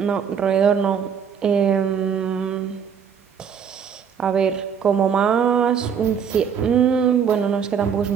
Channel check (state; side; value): quieter; left; 7.3 dB